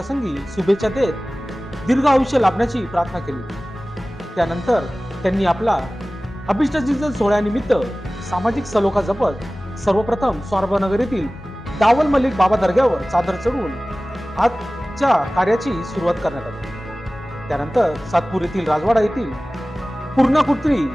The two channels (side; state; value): both; normal; correlation 0.98